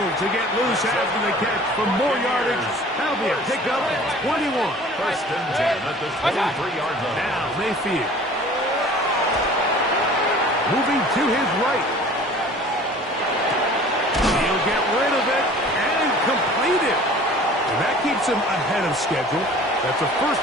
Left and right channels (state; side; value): normal; both; correlation 0.46